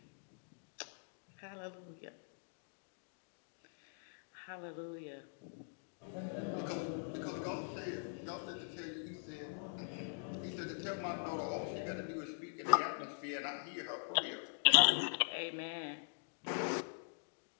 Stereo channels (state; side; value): silent; right; digital silence